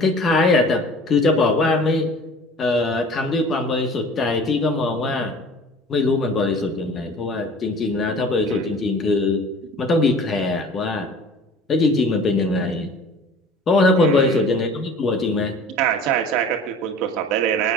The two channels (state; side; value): normal; both; correlation 0.45